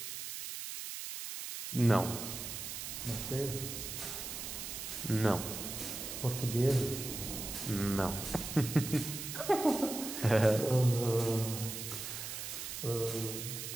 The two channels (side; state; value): right; noise; hiss, 6 dB below the sound